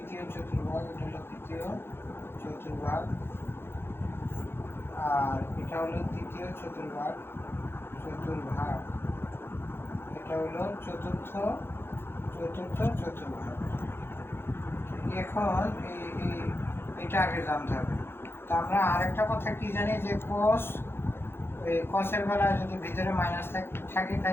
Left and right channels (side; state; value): right; late; 0.11 ms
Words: চতুর্ভাগ, আর এটা হলো তৃতীয় চতুর্ভাগ, এটা হলো চতুর্থ চতুর্ভাগ। এখন এটা আগে জানতে হবে। তো আমরা আরেকটা কথা কি জানি যে কসের বেলায় যদি ভিতরে মাইনাস থাকে